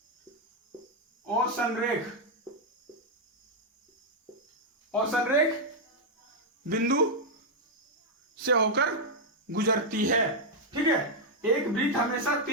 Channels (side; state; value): both; normal; correlation -0.02